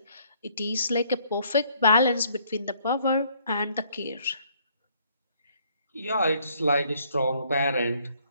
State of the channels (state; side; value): inverted; both; correlation -0.65